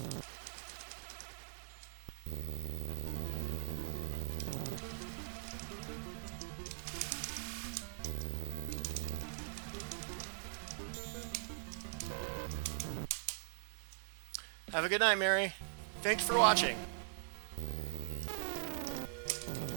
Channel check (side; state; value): left; silent; digital silence